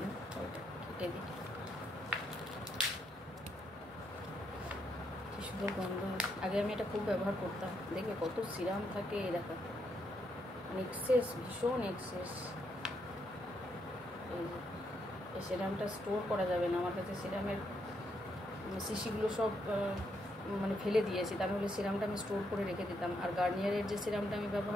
না। ওইটা কেটে দিই। কি সুন্দর গন্ধ। আগে আমি এটা খুব ব্যবহার করতাম, দেখবে কত সিরাম থাকে, এই দেখো এক্সেস, ভীষণ এক্সেস। এই সিরামটা স্টোর করা যাবে না, আমার কাছে সিরামের শিশিগুলো সব মানে ফেলে দিয়েছি, তার হলে সিরামটা আমি স্টোর করে রেখে দিতাম। আর গার্নিয়ারের যে সিরামটা আমি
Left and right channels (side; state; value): both; normal; correlation 0.77